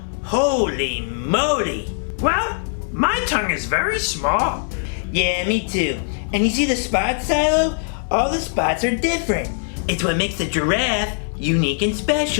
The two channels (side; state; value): right; silent; 64 dB below the other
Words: Holy moly. Well, my tongue is very small. Yeah, me too. And you see the spots, Cilo? All the spots are different. It's what makes the giraffe unique and